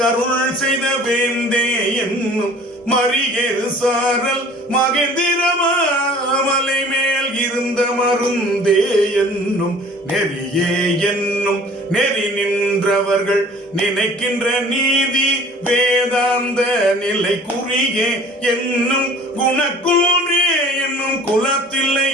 செய்த வேந்தே என்னும் மறியேறு சாரல் மகேந்திர மாமலை மேல் இருந்த மருந்தே என்னும் நெறியே என்னும் நெறி நின்றவர்கள் நினைக்கின்ற நீதி வேதாந்த நிலை குறியே என்னும் குணக்கூறே என்னும் குலத்தில்லை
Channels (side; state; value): both; normal; correlation 0.49